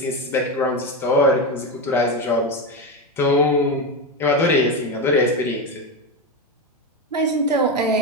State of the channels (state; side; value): normal; both; correlation 0.14